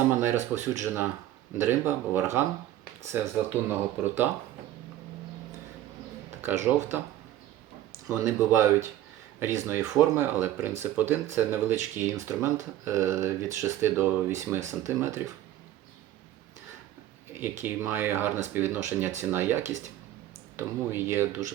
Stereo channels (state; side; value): quieter; left; 13.2 dB